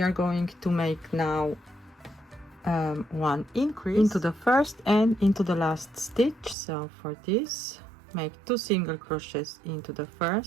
are going to make now 1 increase into the first and into the last stitch. So for this make 2 single crochets into the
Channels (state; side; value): drops out; left; at 6.6 s